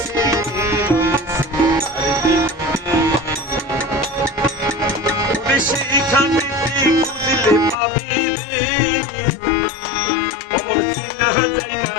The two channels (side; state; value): right; drops out; at 7.8 s